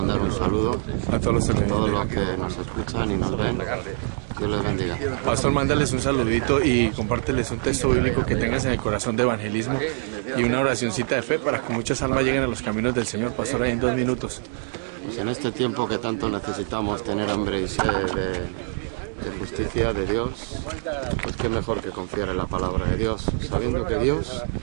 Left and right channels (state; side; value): silent; left; 62 dB below the other